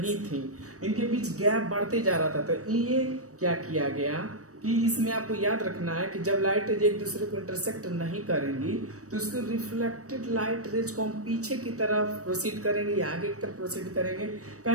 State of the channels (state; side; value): late; left; 0.66 ms